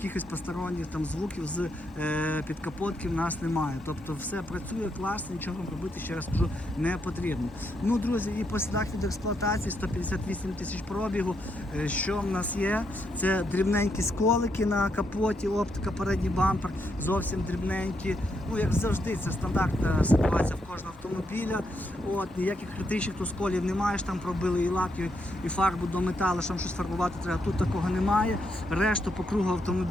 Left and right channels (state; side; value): normal; both; correlation 0.79